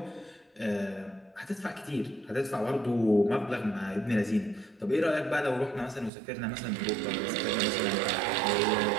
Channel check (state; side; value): drops out; left; at 6.1 s